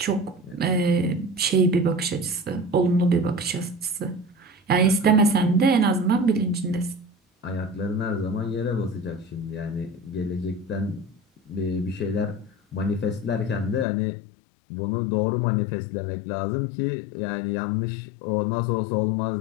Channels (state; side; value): drops out; right; at 13.9 s